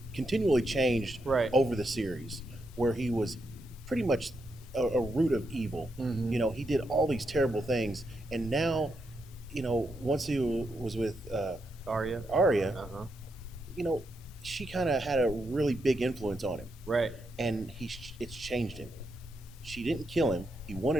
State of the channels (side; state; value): both; normal; correlation 0.82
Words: continually changed Right. over the series, where he was pretty much a root of evil. He did all these terrible things, and now, once he was with Aria. Aria, Uh-huh. she kind of had a really big influence on him, Right. and it's changed him. She didn't kill him. He